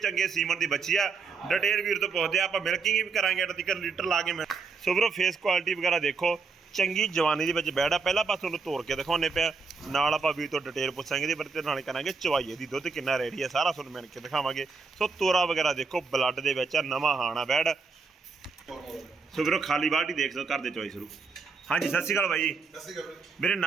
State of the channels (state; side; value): quieter; left; 4.7 dB